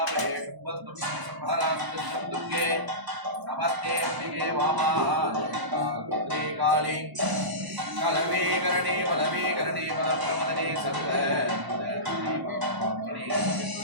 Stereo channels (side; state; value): left; late; 1.0 ms